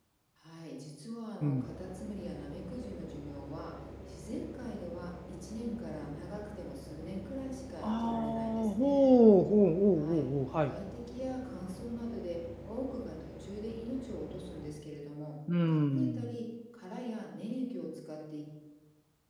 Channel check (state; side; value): identical; both; correlation 1.00